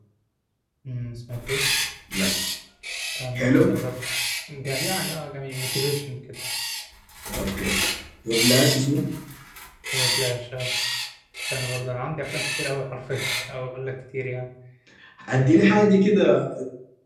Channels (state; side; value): identical; both; correlation 1.00